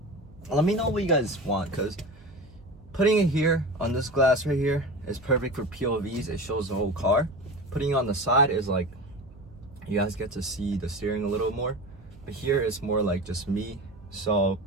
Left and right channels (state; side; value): noise; right; hum, 23 dB below the sound